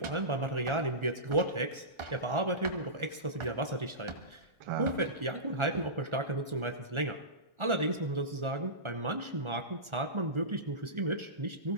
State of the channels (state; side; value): late; left; 1.4 ms